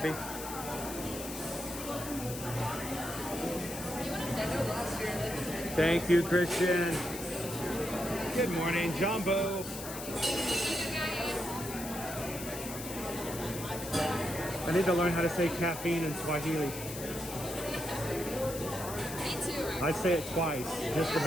Thank you, Christian. Good morning, Jumbo. I need to learn how to say caffeine in Swahili. Me too. I say it twice just to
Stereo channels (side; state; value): left; noise; hiss, 9 dB below the sound